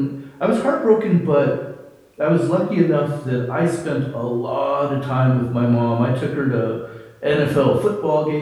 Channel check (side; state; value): both; identical; correlation 1.00